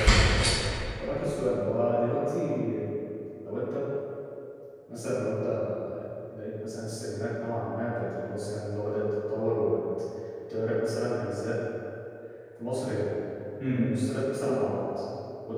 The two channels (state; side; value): identical; both; correlation 1.00